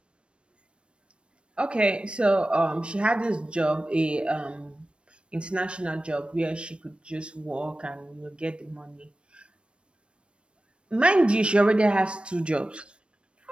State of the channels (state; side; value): late; left; 0.058 ms